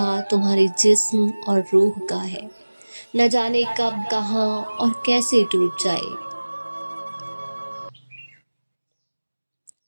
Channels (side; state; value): both; inverted; correlation -1.00